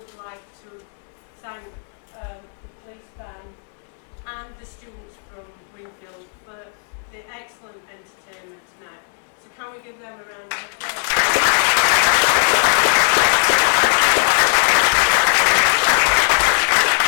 like to thank the police band and the students from Wingfield for the excellent entertainment tonight. So can we give them a round of applause?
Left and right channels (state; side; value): silent; right; 59 dB below the other